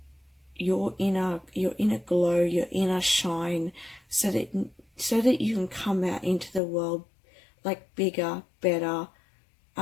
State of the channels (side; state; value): right; drops out; at 6.6 s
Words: your inner glow, your inner shine, so that you can come out into the world like bigger, better,